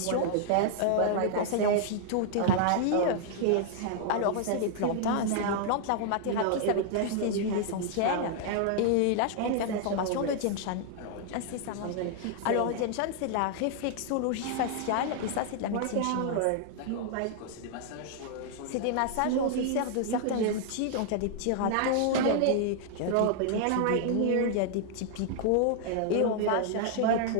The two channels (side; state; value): both; different; correlation -0.01